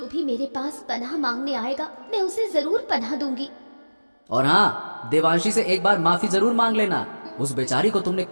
भी मेरे पास पनाह मांगने आएगा मैं उसे जरूर पनाह दूंगी। और हाँ, देवांशी से एक बार माफी जरूर मांग लेना। उस बेचारी को तुमने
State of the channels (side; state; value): both; inverted; correlation -1.00